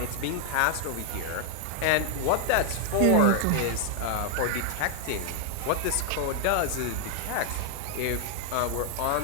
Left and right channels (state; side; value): different; both; correlation 0.00